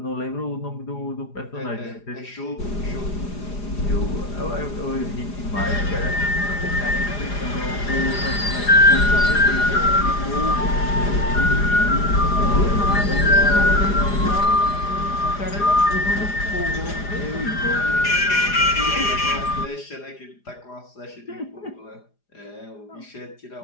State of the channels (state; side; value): late; right; 4.9 ms